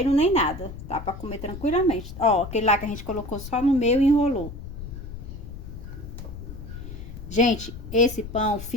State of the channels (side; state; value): left; noise; rumble, 11 dB below the sound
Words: nem nada. Tá pra comer tranquilamente. Ó, aquele lá que a gente colocou só no meio e enrolou. Gente, esse pão